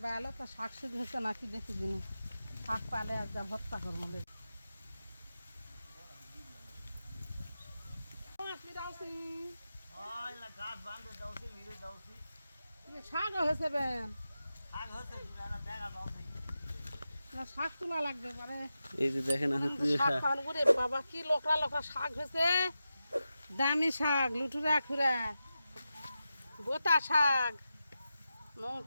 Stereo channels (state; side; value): inverted; both; correlation -0.91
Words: below তো শাক শুধু হচ্ছে নাকি দেখি দিন শাক পালে আর যা ভর্তা করবো শাক হয়েছে বেন না শাক তোলা লাগবে মানে এই যে দেখেন শাক পান করে বাবা কি লোকরা লোকরা শাক হয়েছে দামি শাক লুটুরা খুরা গোটা শাক